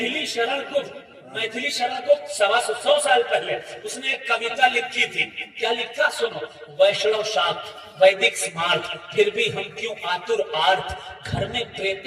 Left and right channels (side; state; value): both; identical; correlation 1.00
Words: शरण गुप्त। मैथिली शरण गुप्त 125 साल पहले उसने एक कविता लिखी थी। क्या लिखा सुनो। वैष्णव शाक्त वैदिक स्मार्ट, फिर भी हम क्यों आतुर आर्त, घर में